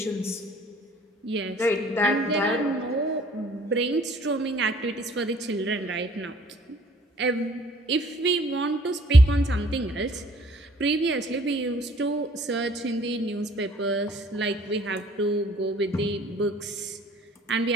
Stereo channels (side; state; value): both; normal; correlation 0.57